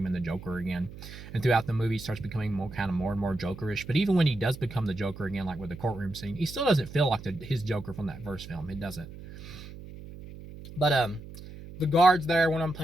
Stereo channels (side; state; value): right; noise; hum, 14 dB below the sound